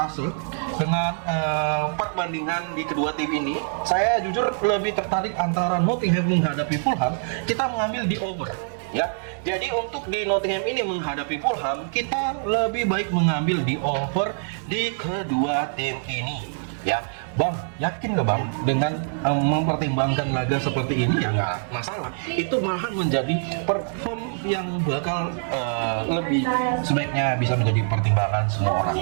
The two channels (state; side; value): silent; left; digital silence